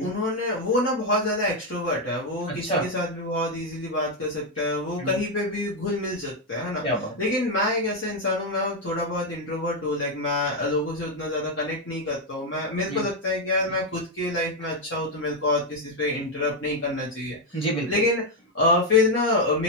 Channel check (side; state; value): both; normal; correlation 0.04